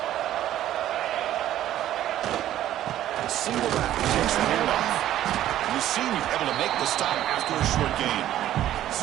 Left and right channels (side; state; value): left; quieter; 12.6 dB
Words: Single back takes the handoff. The senior able to make the stop after a short gain.